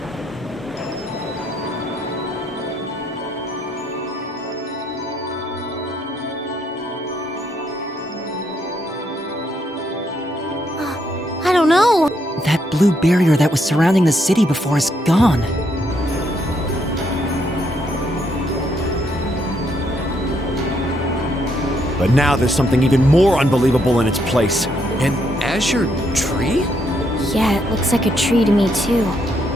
I don't know. That blue barrier that was surrounding the city before is gone. But now there's something even more unbelievable in its place. An azure tree? Yeah, it looks like a tree to me too.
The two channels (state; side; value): normal; both; correlation 0.74